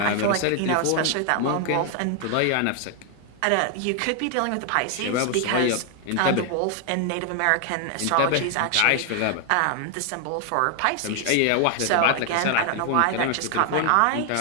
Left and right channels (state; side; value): different; both; correlation 0.00